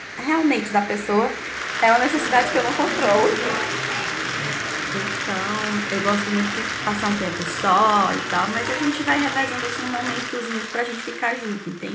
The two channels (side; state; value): both; identical; correlation 1.00